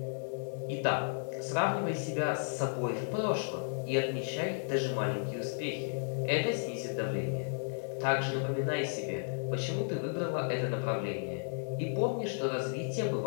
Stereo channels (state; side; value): silent; right; digital silence